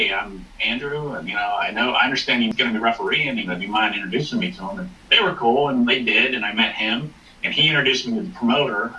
I'm Andrew, and I understand he's going to be refereeing, do you mind introducing me to him? And they were cool, and they did, and I met him, and he introduced me to the promoter,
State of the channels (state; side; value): identical; both; correlation 1.00